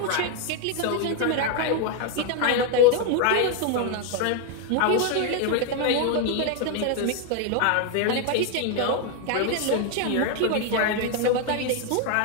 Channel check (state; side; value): different; both; correlation 0.01